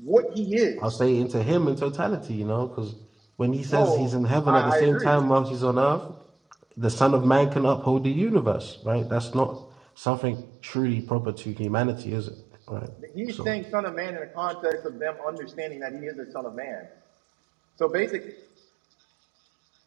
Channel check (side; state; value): left; drops out; at 9.8 s